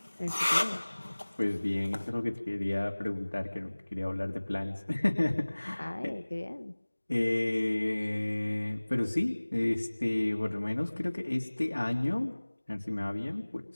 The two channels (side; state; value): both; inverted; correlation -1.00